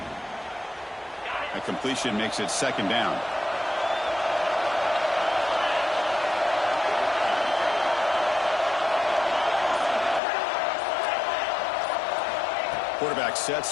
That completion makes it second down. Quarterback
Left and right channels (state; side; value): drops out; right; at 10.2 s